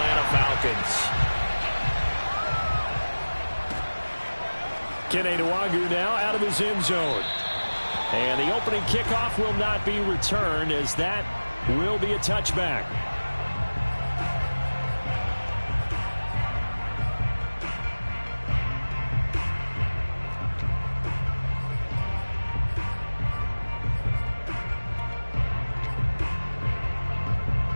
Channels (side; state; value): both; inverted; correlation -1.00